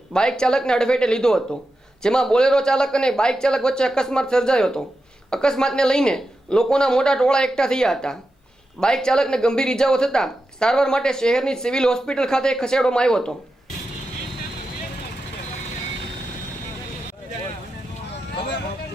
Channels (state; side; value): normal; both; correlation 0.90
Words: બાઇક ચાલકને અડફેટે લીધો હતો, જેમાં બોલેરો ચાલક અને બાઇક ચાલક વચ્ચે અકસ્માત સર્જાયો હતો। અકસ્માતને લઈને લોકોના મોટા ટોળા એકઠા થયા હતા। બાઇક ચાલકને ગંભીર ઈજાઓ થતાં સારવાર માટે શહેરની સિવિલ હોસ્પિટલ ખાતે ખસેડવામાં આવ્યો હતો।